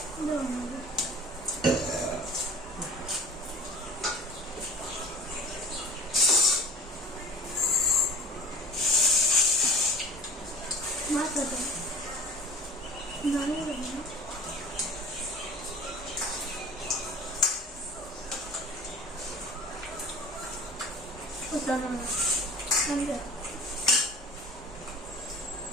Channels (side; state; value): both; normal; correlation 0.44